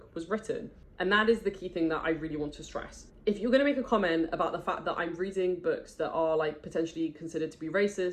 was written. And that is the key thing that I really want to stress. If you're going to make a comment about the fact that I'm reading books that are like potentially considered to be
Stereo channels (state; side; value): identical; both; correlation 1.00